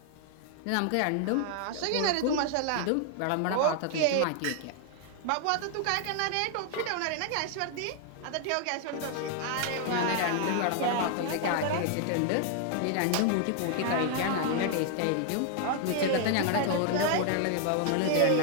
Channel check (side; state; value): both; different; correlation 0.00